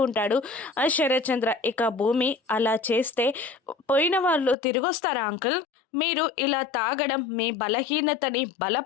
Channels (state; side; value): drops out; right; at 4.5 s